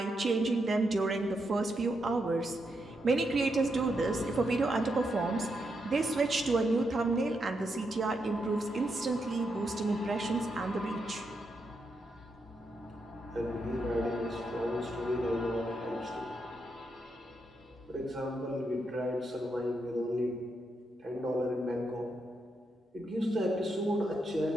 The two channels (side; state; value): both; normal; correlation 0.82